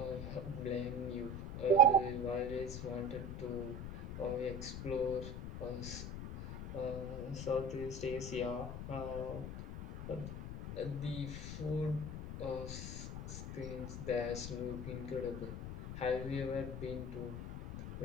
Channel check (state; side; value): noise; left; rumble, 7 dB below the sound